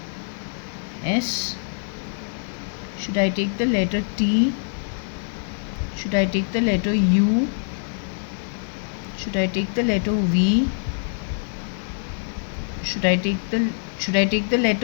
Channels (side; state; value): right; silent; 62 dB below the other